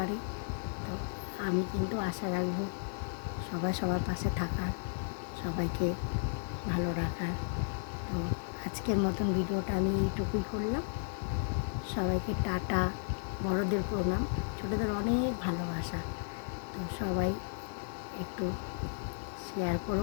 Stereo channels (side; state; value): right; silent; digital silence